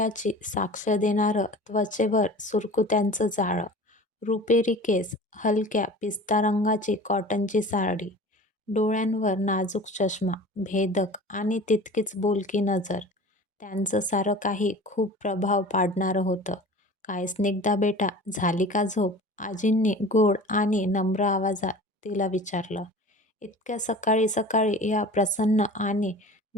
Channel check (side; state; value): both; normal; correlation 0.40